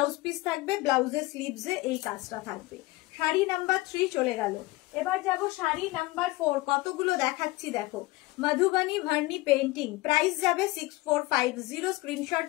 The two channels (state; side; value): quieter; right; 20.6 dB